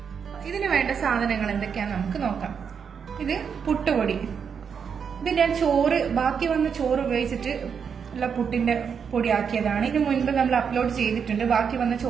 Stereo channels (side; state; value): left; quieter; 6.8 dB